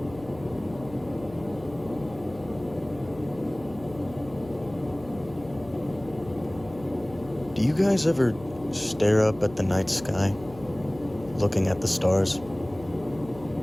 Do you guys ever stare up at the night sky, looking at the stars?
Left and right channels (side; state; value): left; noise; hum, 18 dB below the sound